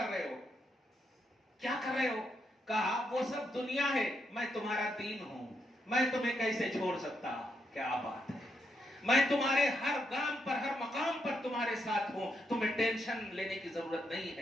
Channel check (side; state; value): both; normal; correlation 0.80